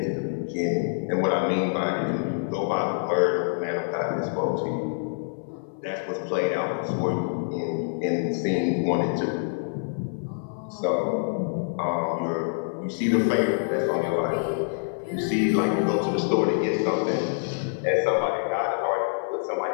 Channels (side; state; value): right; silent; 61 dB below the other